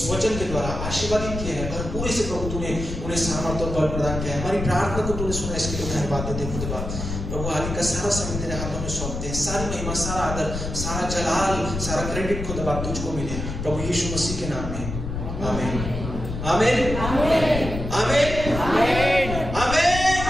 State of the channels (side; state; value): left; noise; rumble, 5 dB below the sound